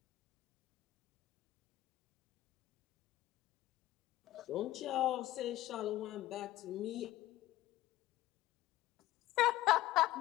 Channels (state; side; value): quieter; right; 15.8 dB